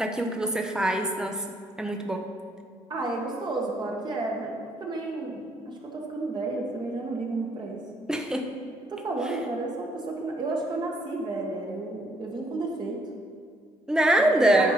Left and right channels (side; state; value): both; normal; correlation 0.70